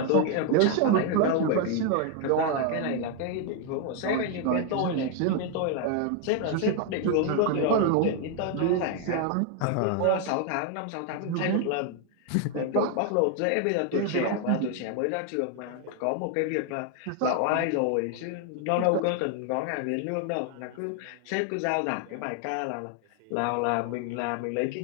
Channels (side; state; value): both; different; correlation 0.01